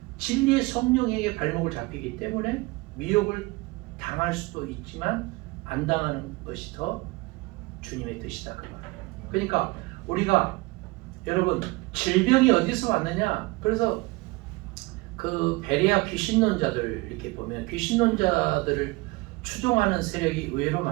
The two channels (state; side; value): quieter; left; 23.4 dB